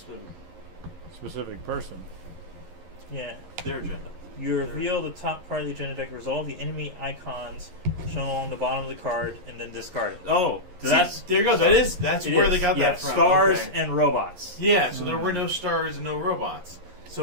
specific person. Yeah. their agenda. You reveal the top card of the agenda deck, resolve the enemy icons shown along the bottom of the card, and then discard it. Oh, See, that's there you go. That's it where is. they got yeah, that from. stars Okay. and robots. Yeah, so there were no stars and no robots.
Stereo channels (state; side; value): late; left; 11 ms